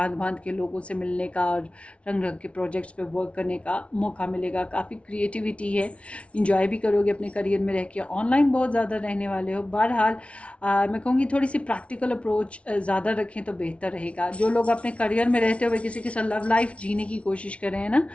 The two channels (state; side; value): late; right; 0.062 ms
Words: भांत के लोगों से मिलने का और रंग रंग के प्रोजेक्ट्स पे वर्क करने का मौका मिलेगा। काफ़ी क्रिएटिविटी है, इंजॉय भी करोगे अपने करियर में रह के। ऑनलाइन बहुत ज़्यादा रहने वाले हो। बहरहाल मैं कहूँगी थोड़ी सी प्रैक्टिकल अप्रोच ज़्यादा रखें तो बेहतर रहेगा। जो लोग अपने करियर में रहते हुए किसी के साथ लव लाइफ जीने की कोशिश कर रहे हैं ना,